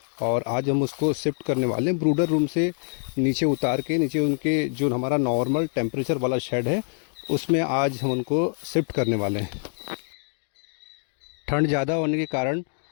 और आज हम उसको शिफ्ट करने वाले हैं ब्रूडर रूम से नीचे उतार के। नीचे उनके जो हमारा नॉर्मल टेम्परेचर वाला शेड है उसमें आज हम उनको शिफ्ट करने वाले हैं। ठंड ज़्यादा होने के कारण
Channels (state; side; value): silent; right; 62 dB below the other